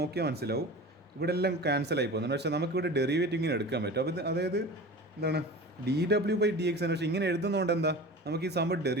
മനസ്സിലാവും ഇവിടെ എല്ലാം ക്യാൻസൽ ആയി പോകുന്നുണ്ട്. പക്ഷേ നമുക്കിവിടെ ഡെറിവേറ്റീവ് ഇങ്ങനെ എടുക്കാൻ പറ്റും. അപ്പോൾ അതായത് എന്താണ് ഡി ഡബ്ല്യു ബൈ ഡി എക്സ് ആണ്. പക്ഷേ ഇങ്ങനെ എഴുതുന്നതുകൊണ്ട് എന്താ, നമുക്ക് ഈ സംഭവം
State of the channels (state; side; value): normal; both; correlation 0.35